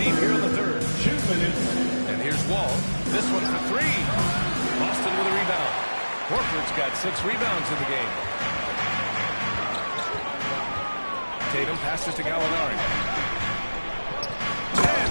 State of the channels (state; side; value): inverted; both; correlation -1.00